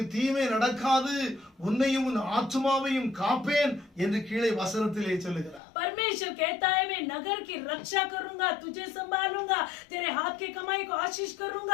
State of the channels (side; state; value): right; drops out; at 5.6 s